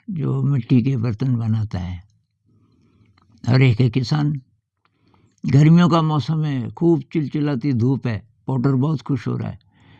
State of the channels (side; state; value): both; identical; correlation 1.00